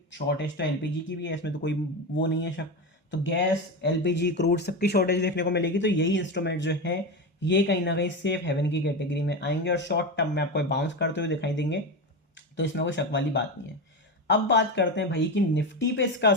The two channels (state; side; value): normal; both; correlation 0.18